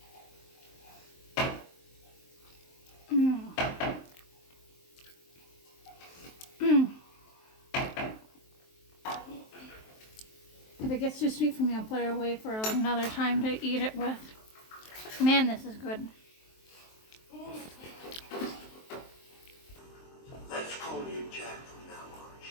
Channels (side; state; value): right; late; 23 ms